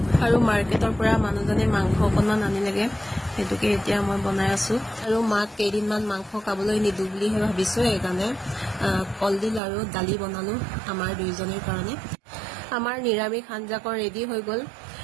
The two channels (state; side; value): drops out; left; at 9.6 s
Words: আৰু মাৰ্কেটৰ পৰা মানুহজনে মাংস অকণমান আনিলেগৈ, সেইটোকে এতিয়া মই বনাই আছোঁ। আৰু মাক কেইদিনমান মাংস খাবলৈ নিদিওঁ বুলিহে ভাবিছোঁ, সেইকাৰণে কলডিল আৰু দালি বনালোঁ আমাৰ দুয়োজনীৰ কাৰণে। আমাৰ নিৰামিষ আঞ্জাকণ ৰেডি হৈ গ'ল।